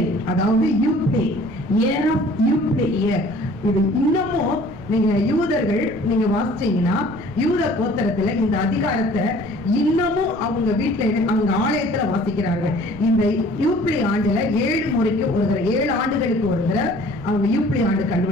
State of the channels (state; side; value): noise; right; rumble, 16 dB below the sound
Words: அதாவது யூப்ளே, இயர் ஆஃப் யூப்ளே இயர். இது இன்னமும் நீங்க யூதர்கள் நீங்க வாசிச்சீங்கன்னா யூத கோத்திரத்துல இந்த அதிகாரத்தை இன்னமும் அவங்க வீட்டுல அவங்க ஆலயத்துல வாசிக்கிறார்கள். இந்த யூப்ளி ஆண்டுல 7 முறைக்கு ஒரு தடவை, 7 ஆண்டுகளுக்கு ஒரு தடவை அவங்க யூப்ளி ஆண்டு